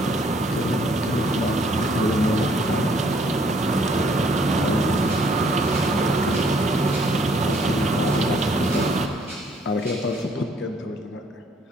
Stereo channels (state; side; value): normal; both; correlation 0.64